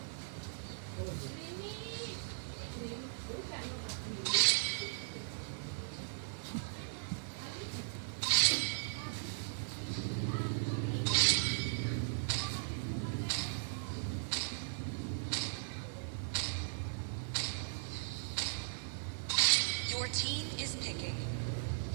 Team is picking.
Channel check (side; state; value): left; silent; digital silence